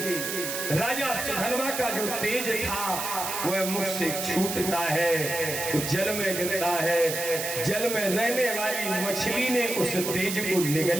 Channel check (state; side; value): noise; right; hiss, 4 dB below the sound